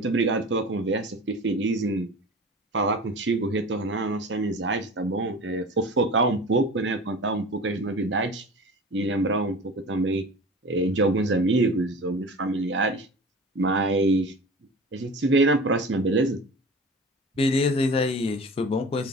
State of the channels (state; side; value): normal; both; correlation 0.37